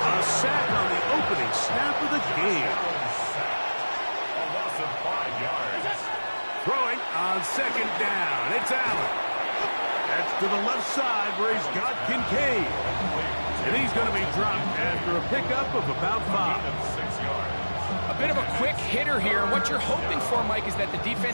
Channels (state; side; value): inverted; both; correlation -1.00